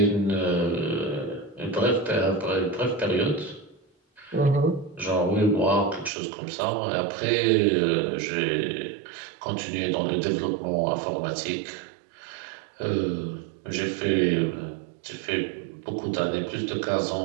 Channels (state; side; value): drops out; left; at 6.1 s